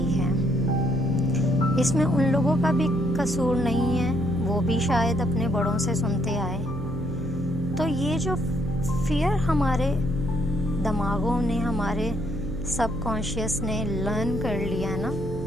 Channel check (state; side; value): noise; right; hum, 8 dB below the sound